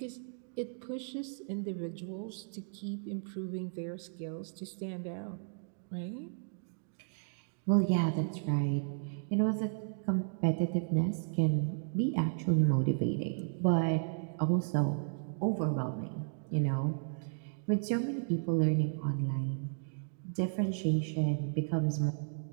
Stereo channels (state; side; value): silent; left; digital silence